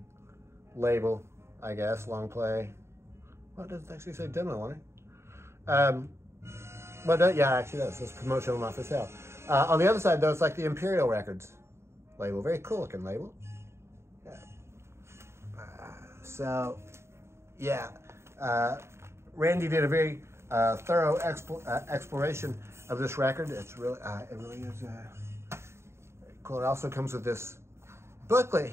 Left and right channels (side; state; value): left; late; 0.13 ms